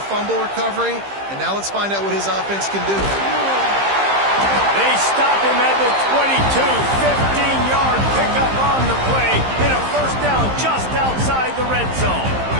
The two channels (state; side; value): late; left; 15 ms